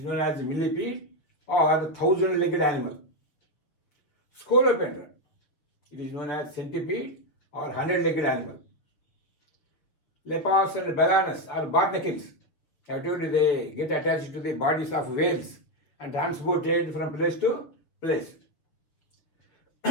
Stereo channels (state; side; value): late; right; 6.9 ms